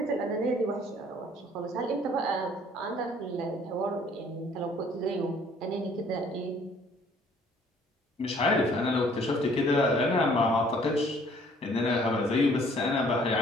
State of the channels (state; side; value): normal; both; correlation 0.58